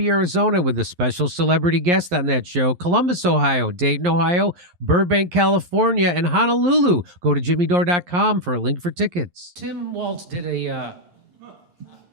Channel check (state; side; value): late; left; 11 ms